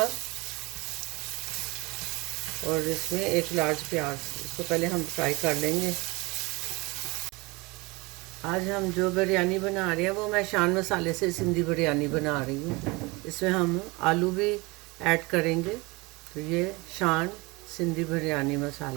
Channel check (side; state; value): left; quieter; 24.8 dB